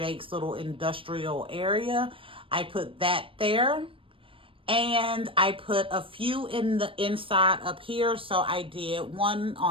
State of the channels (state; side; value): late; left; 0.26 ms